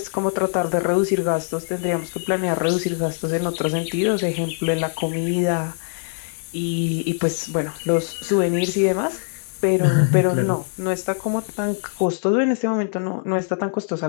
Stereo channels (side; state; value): right; silent; digital silence